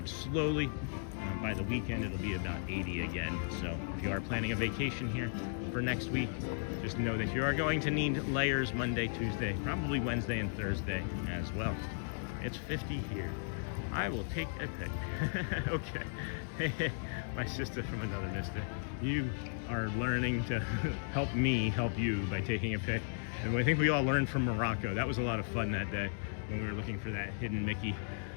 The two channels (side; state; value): right; silent; digital silence